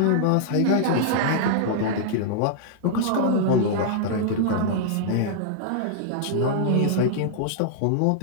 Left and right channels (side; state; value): both; different; correlation -0.01